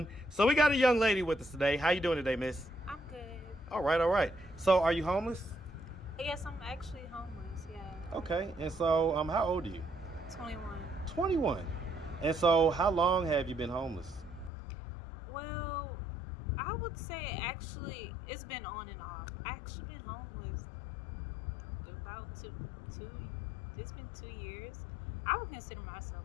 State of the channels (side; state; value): right; drops out; at 14.5 s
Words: So we got a young lady with us today. How you doing today, miss? I'm good. All right, all right. So are you homeless? Yes, I'm actually homeless, yeah. Okay, and so how old are you? 21. 21. And so how long have you been homeless? Well, I would say actually it's been on and off. I actually been homeless about it's been 2 years. I would consider myself